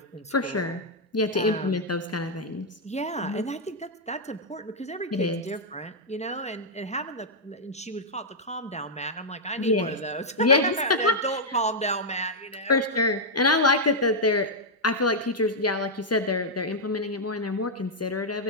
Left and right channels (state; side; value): normal; both; correlation -0.05